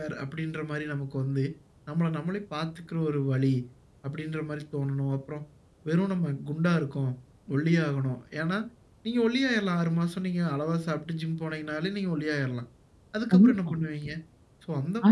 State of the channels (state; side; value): identical; both; correlation 1.00